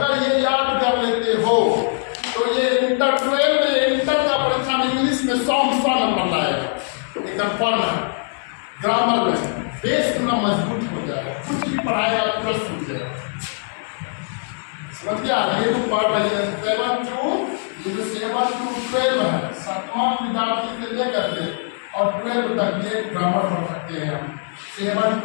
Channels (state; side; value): silent; right; digital silence